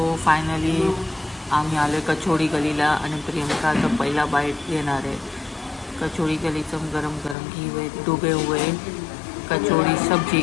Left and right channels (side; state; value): right; drops out; at 7.4 s